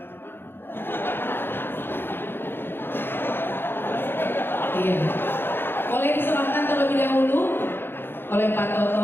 Iya. Boleh diserahkan terlebih dahulu oleh Pak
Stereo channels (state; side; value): late; right; 0.10 ms